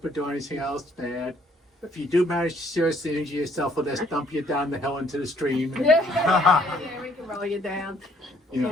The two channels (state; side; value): normal; both; correlation 0.64